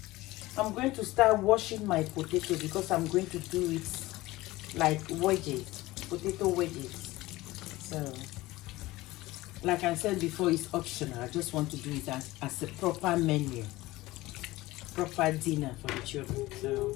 I'm going to start washing my potato because I'm going to do it like wedges, potato wedges. So, like I said before, it's optional. I just want to do it as a proper menu, proper dinner for the children. So,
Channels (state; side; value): quieter; right; 18.7 dB